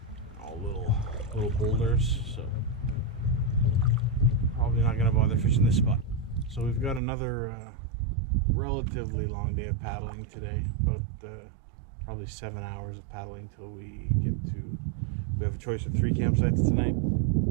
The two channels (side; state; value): left; drops out; at 7.0 s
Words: all little boulders. So probably not gonna bother fishing this spot. So we've got another relatively long day of paddling today, about probably 7 hours of paddling till we get to. We have a choice of 3 campsites tonight,